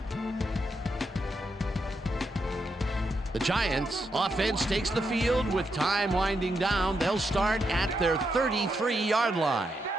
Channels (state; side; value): normal; both; correlation 0.82